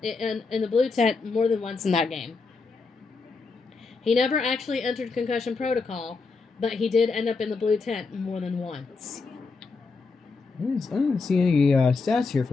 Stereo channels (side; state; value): right; quieter; 4.3 dB